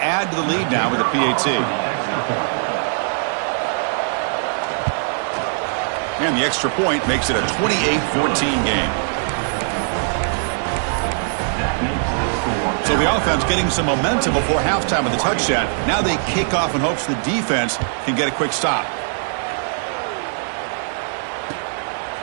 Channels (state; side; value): silent; left; digital silence